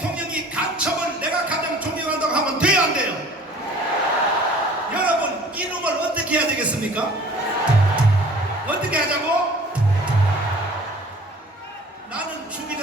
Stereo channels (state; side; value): normal; both; correlation 0.48